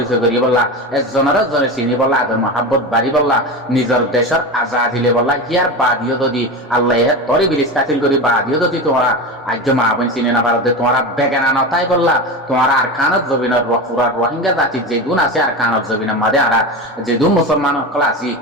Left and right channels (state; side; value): normal; both; correlation 0.23